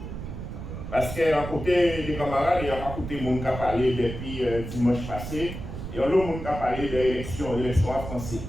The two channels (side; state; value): right; noise; rumble, 8 dB below the sound